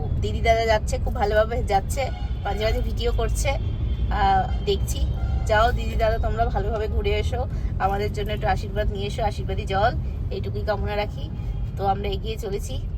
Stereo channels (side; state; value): both; identical; correlation 1.00